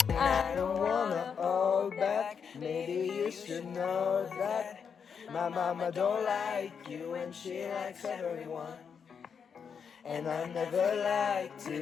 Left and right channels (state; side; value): quieter; right; 6.7 dB